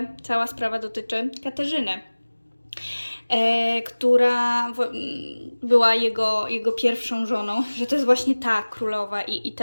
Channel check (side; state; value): both; inverted; correlation -1.00